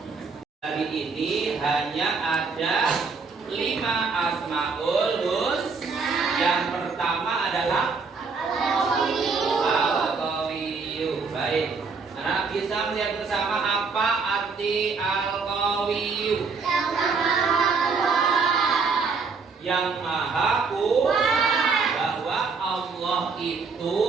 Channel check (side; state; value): left; quieter; 4.8 dB